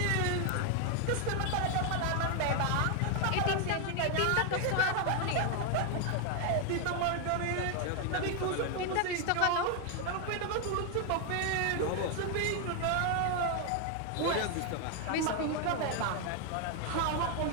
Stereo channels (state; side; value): different; both; correlation 0.01